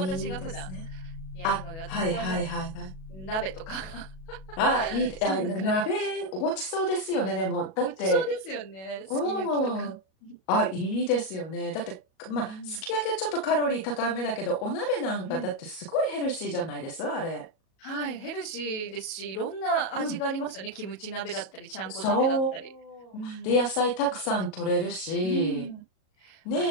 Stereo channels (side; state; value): right; late; 37 ms